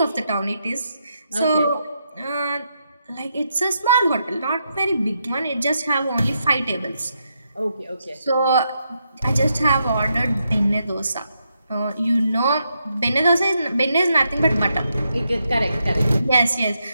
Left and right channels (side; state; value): both; inverted; correlation -0.81